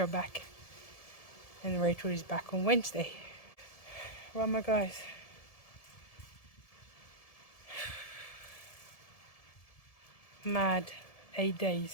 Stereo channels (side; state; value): right; late; 1.7 ms